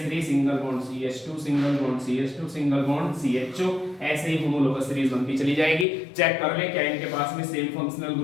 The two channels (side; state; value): right; drops out; at 5.9 s